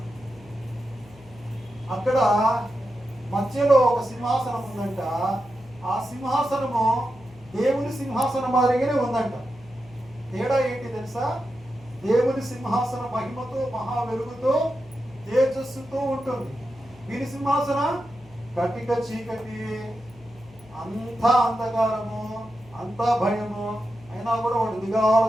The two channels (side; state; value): left; noise; hum, 23 dB below the sound